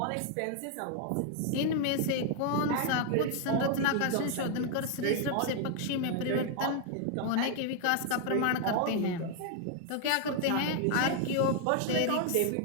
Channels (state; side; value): different; both; correlation 0.00